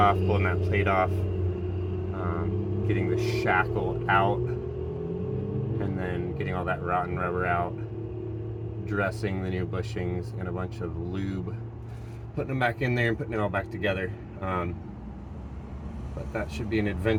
pulling that plate off, getting the shackle out, and then getting all that rotten rubber out, dressing the new bushings in a bunch of lube, putting them back in there and putting it all back together. But that should be an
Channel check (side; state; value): both; identical; correlation 1.00